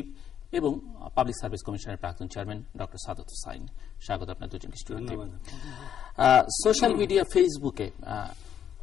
এবং পাবলিক সার্ভিস কমিশনের প্রাক্তন চেয়ারম্যান ডক্টর সাদত হোসাইন। স্বাগত আপনার দুজনকে স্টুডিওতে। সোশ্যাল মিডিয়া, ফেসবুকে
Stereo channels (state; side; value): quieter; right; 9.2 dB